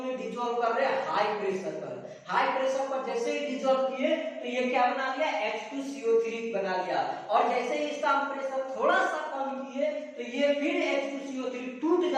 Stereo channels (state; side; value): identical; both; correlation 1.00